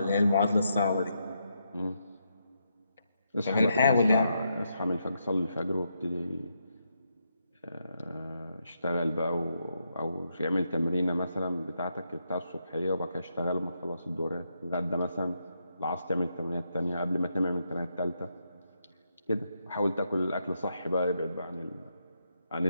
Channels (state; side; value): inverted; both; correlation -0.81